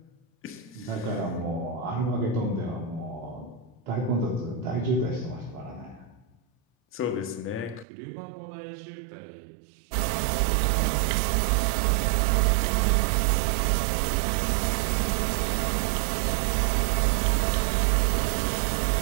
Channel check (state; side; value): drops out; left; at 7.9 s